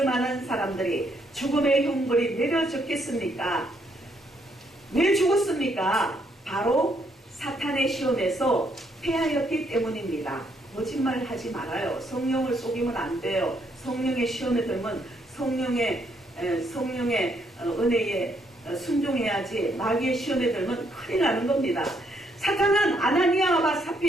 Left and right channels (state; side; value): normal; both; correlation 0.73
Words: 만한 사람들이 죽음의 형벌이 내려졌겠습니까? 왜 죽었습니까? 바로 사탄의 시험에서 패하였기 때문입니다. 거짓말 하지 말아요. 성령을 속이면 안 돼요. 성령의 시험에 들면 성령의 은혜에 순종해야지 마귀의 시험에 들면 큰일 나는 겁니다. 사탄은 아나니아와